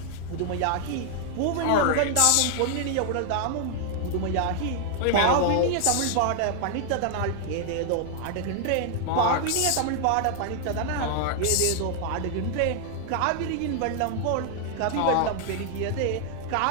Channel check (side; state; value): both; different; correlation 0.00